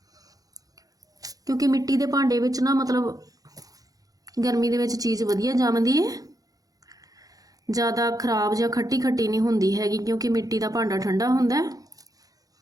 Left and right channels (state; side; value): late; left; 0.17 ms